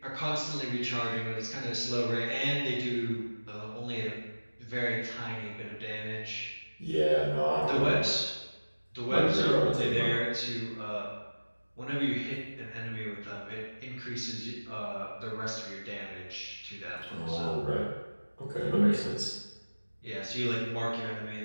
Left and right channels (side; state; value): both; inverted; correlation -1.00